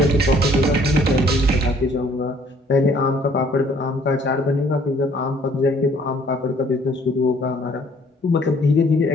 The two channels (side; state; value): both; normal; correlation 0.59